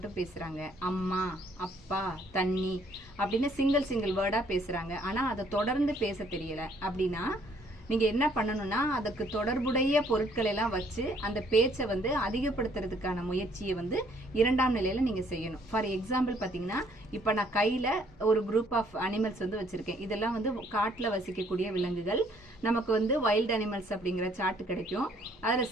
பேசுறாங்க. அம்மா, அப்பா, தண்ணி அப்படின்னு சிங்கிள் வேர்டா பேசுறாங்க. ஆனா அதை தொடர்ந்து பேச தெரியல அப்படின்னா நீங்க என்ன பண்ணணும்னா, அதுக்கு தொடர்புடைய பொருட்களை எல்லாம் வச்சு அந்த பேச்சை வந்து அதிகப்படுத்துறதுக்கான முயற்சியை வந்து 2ஆம் நிலையில நீங்க செய்யணும். ஃபார் எக்ஸாம்பிள் பாத்தீங்கன்னா, இப்ப நான் கையில ஒரு குரூப் ஆஃப் அனிமல்ஸ் வந்து வச்சிருக்கேன். இதெல்லாம் வந்து காட்டுல வசிக்கக்கூடிய விலங்குகள். நமக்கு வந்து வைல்ட் அனிமல்ஸ் அப்படிங்கிற சார்ட் கிடைக்கும். அதுல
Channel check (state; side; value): normal; both; correlation 0.64